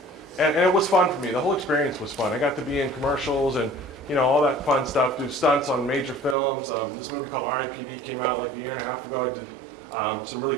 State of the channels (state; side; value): drops out; left; at 6.4 s